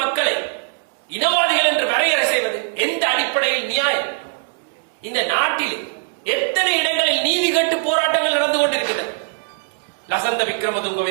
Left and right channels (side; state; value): left; silent; digital silence